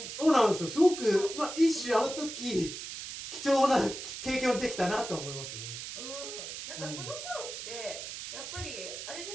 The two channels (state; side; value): noise; right; hiss, 8 dB below the sound